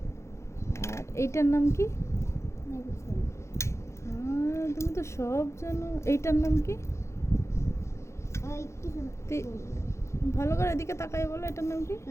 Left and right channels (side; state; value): right; late; 0.14 ms